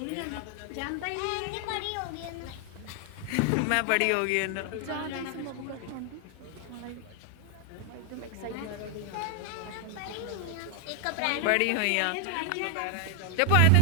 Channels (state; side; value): different; both; correlation 0.00